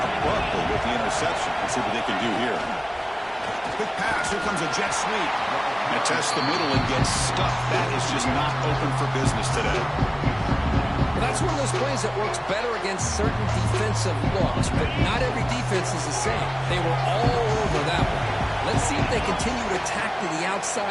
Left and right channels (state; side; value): identical; both; correlation 1.00